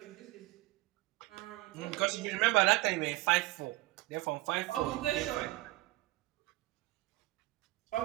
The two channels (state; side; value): quieter; left; 19.6 dB